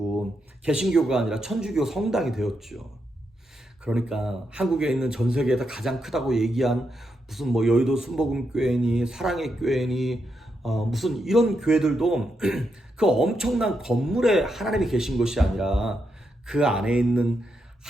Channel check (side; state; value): both; normal; correlation 0.83